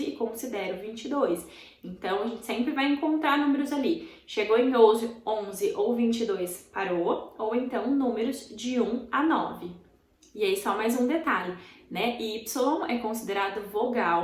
e considera o 22. Então, a gente sempre vai encontrar números ali. Chegou em 11 ou 22, parou, ou então números de 1 a 9. E aí, só mais um detalhe, né? Y é considerado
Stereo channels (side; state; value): both; identical; correlation 1.00